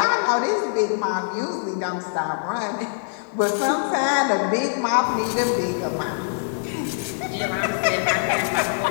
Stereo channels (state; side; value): silent; right; digital silence